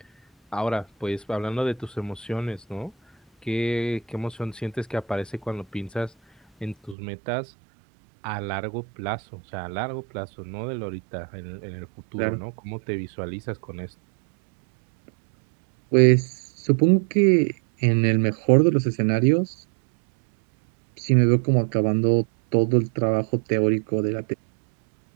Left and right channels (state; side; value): drops out; left; at 7.0 s